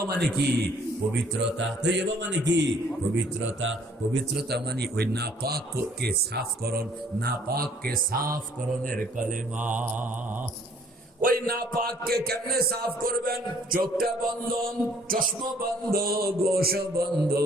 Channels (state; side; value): normal; both; correlation 0.59